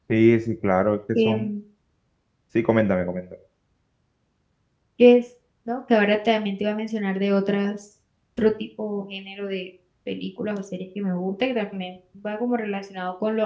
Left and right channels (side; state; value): both; identical; correlation 1.00